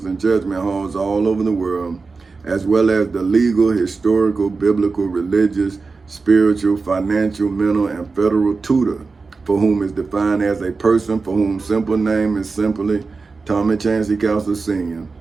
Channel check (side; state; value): left; quieter; 4.3 dB